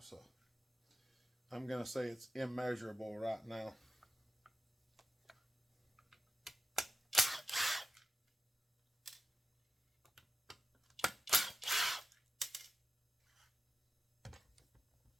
So I'm going to say it's immeasurable right now.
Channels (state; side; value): normal; both; correlation 0.93